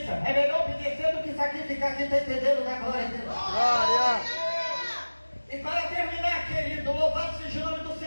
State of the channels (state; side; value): inverted; both; correlation -1.00